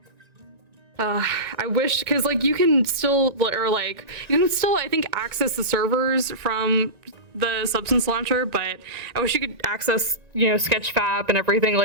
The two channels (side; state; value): left; late; 1.9 ms